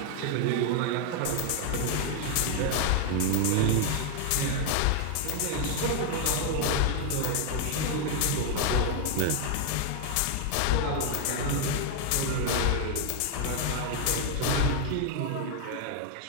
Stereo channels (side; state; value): both; different; correlation 0.00